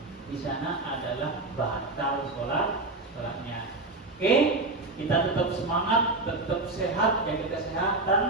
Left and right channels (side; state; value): left; quieter; 3.1 dB